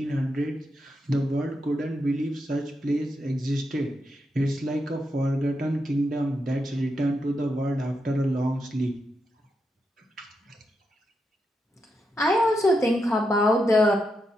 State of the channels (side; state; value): both; normal; correlation 0.84